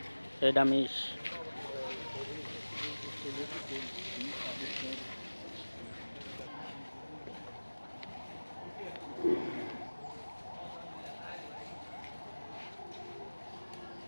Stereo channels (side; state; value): both; inverted; correlation -1.00